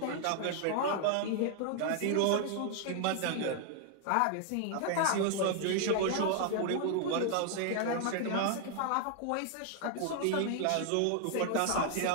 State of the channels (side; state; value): both; different; correlation 0.00